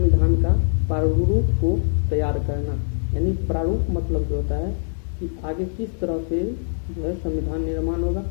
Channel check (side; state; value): right; silent; 64 dB below the other